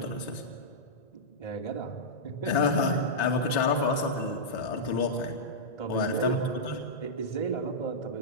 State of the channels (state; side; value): late; right; 1.9 ms